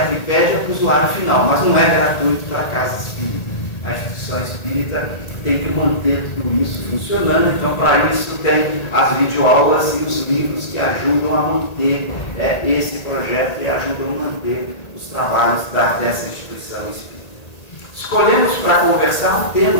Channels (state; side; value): late; right; 1.8 ms